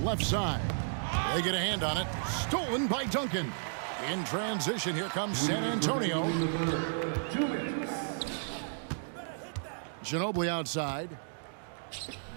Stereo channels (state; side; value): silent; left; digital silence